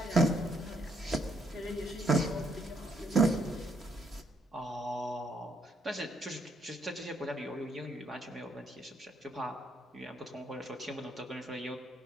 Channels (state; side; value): normal; both; correlation 0.72